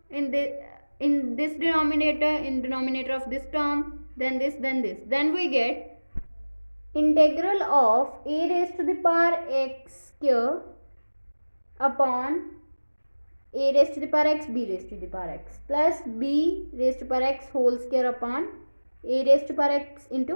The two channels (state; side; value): inverted; both; correlation -1.00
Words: in this denominator, in denominator of this term, then this, then this. Then we get integral of a raised to the power x square upon a raised to the power x b raised to the power x plus b raised to power x whole square upon a raised to power x